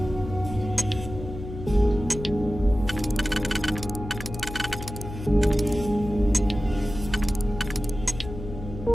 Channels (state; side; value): noise; left; hum, 9 dB below the sound